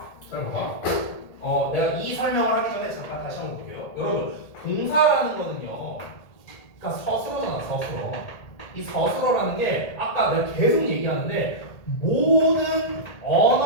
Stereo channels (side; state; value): right; late; 1.8 ms